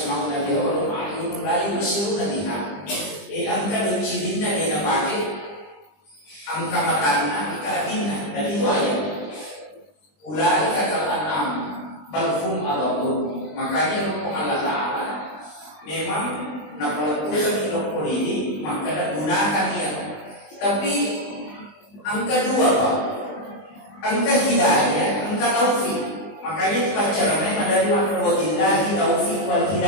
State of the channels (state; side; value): late; right; 20 ms